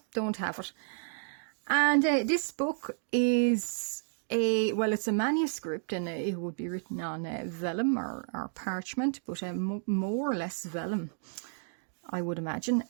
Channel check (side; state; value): left; silent; digital silence